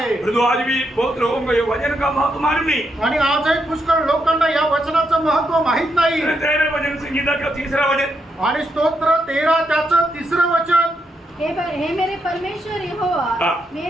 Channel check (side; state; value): both; normal; correlation 0.80